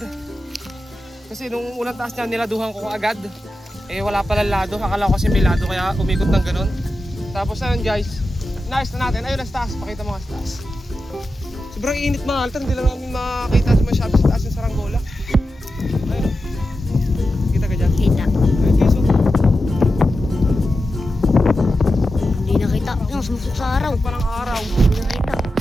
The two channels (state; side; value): normal; both; correlation 0.91